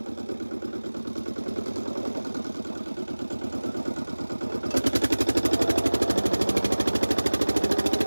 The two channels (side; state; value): both; inverted; correlation -1.00